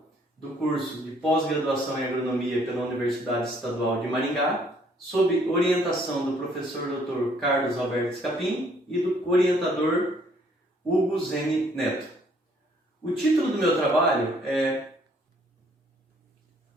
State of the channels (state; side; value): normal; both; correlation 0.63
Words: do curso de pós-graduação em agronomia pela Universidade Estadual de Maringá, sob orientação do professor Dr. Carlos Alberto Scapin e do orientador Hugo Zene Neto. O título do meu trabalho é